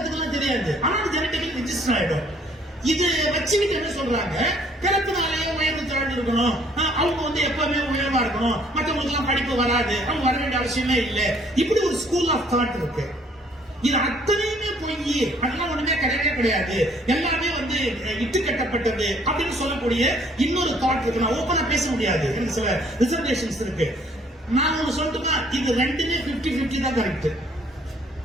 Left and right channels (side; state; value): both; normal; correlation 0.61